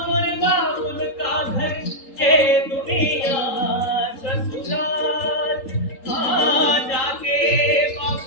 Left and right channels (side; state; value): right; late; 3.8 ms